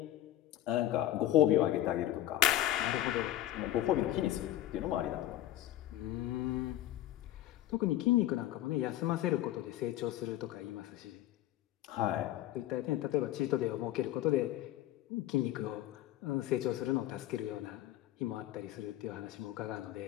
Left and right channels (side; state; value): right; quieter; 13.6 dB